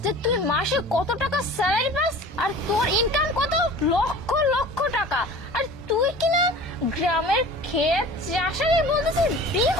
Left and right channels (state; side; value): normal; both; correlation 0.41